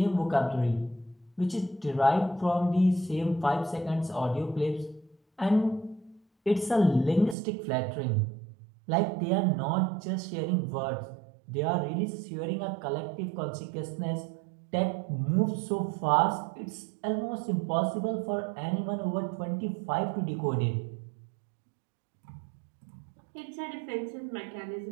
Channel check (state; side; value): drops out; left; at 7.4 s